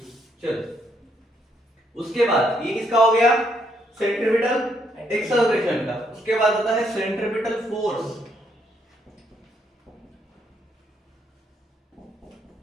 चलो, उसके बाद ये किसका हो गया, सेंट्रीपिटल एक्सेलरेशन का। उसके बाद आता है सेंट्रीपिटल फोर्स,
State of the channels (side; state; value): both; normal; correlation 0.73